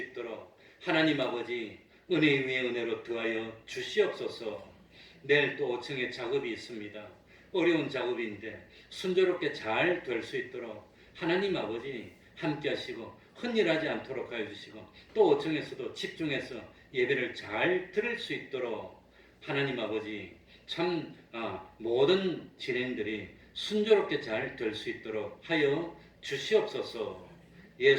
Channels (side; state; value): both; identical; correlation 1.00